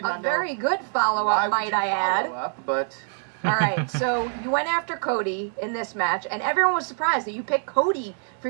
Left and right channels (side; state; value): left; silent; 62 dB below the other